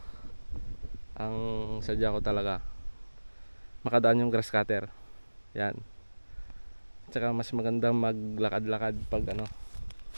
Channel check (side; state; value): both; inverted; correlation -1.00